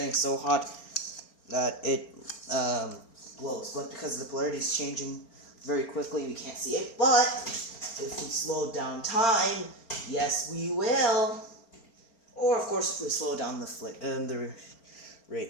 so hot that it glows. But because the polarity is changing very quickly, we can't see it. But if we slow down time, yes, we will. Or, of course, if we slow down the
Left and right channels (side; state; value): right; late; 4.4 ms